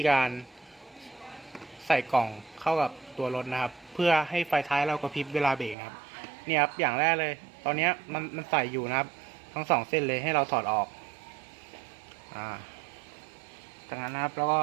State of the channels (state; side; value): drops out; left; at 5.8 s